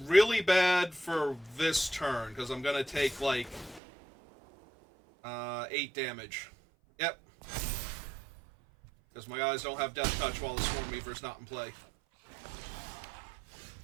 bad for this turn, because I'm gonna take, like, 8 damage. Yep. Because my guys don't have Death Touch while the Swarm Weaver's not in play.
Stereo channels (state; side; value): drops out; left; at 3.8 s